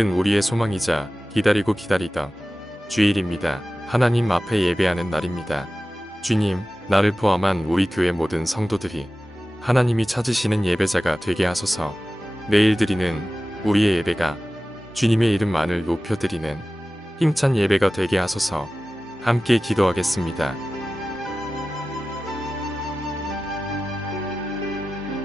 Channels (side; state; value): both; normal; correlation 0.95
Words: 우리의 소망이자 기다리고 기다리던 주일입니다. 하나님 앞에 예배하는 날입니다. 주님, 나를 포함한 우리 교회 모든 성도들이 하나님이 찾으시는 예배자가 되게 하소서. 내일 드리는 우리의 예배가 주님의 이름만을 높여드리는 힘찬 예배가 되게 하소서. 함께 기도하겠습니다.